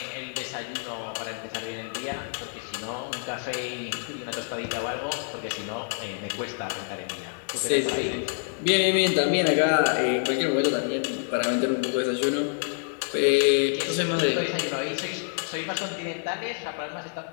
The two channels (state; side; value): silent; right; 60 dB below the other